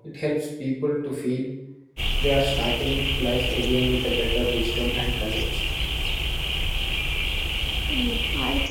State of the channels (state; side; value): identical; both; correlation 1.00